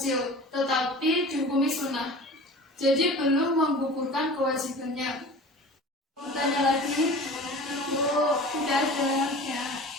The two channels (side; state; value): both; normal; correlation 0.39